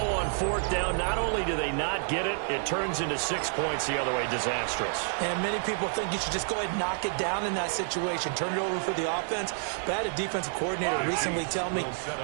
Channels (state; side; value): silent; left; 59 dB below the other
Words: 4th down. Not only do they not get it, it turns into 6 points the other way. Disastrous. And many people think you should just go ahead and knock it down in that situation. Turn it over for the offense. But I had a defensive coordinator recently tell me,